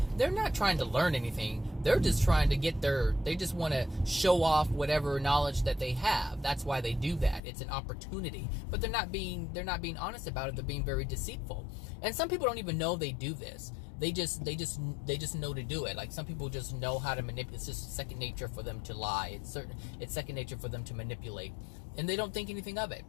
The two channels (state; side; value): drops out; right; at 7.4 s